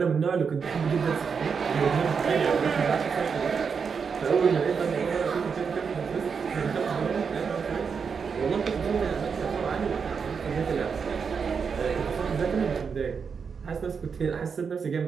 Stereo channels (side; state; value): left; quieter; 6.0 dB